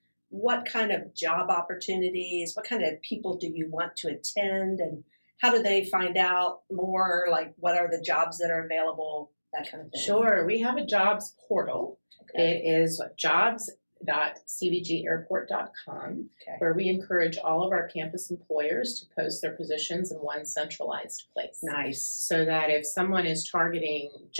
what kind of job opportunities, what kind of people do you want to attend, and how do they find out more? Like, what are the jobs that are available, that kind of thing? Sure. We have a jobs portal. Okay. It is jobs.cvgairport.com, where we encourage all of our campus employers to post their positions in one centralized place. Nice. So that if someone is targeting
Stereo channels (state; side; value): inverted; both; correlation -1.00